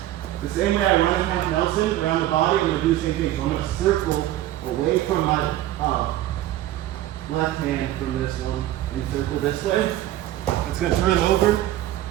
The same way I run a half Nelson around the body, I'm gonna do the same thing. So I'm gonna circle away from my left hand from this one and circle this way. It's gonna turn over.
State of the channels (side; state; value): left; quieter; 14.0 dB